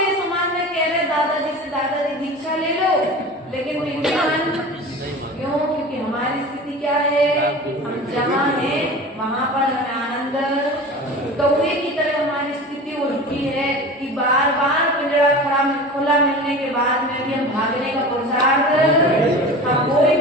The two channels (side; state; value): both; normal; correlation 0.35